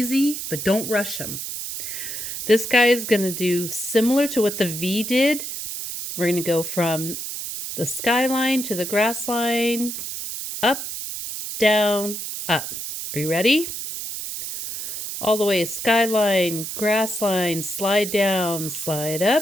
but don't rush them. This guy is going to do similar to what the V did. We're going to go from the skyline to the grass line, up, down, up. Are you ready? All the way, skyline, grass line, slide down, slide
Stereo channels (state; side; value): noise; right; hiss, 6 dB below the sound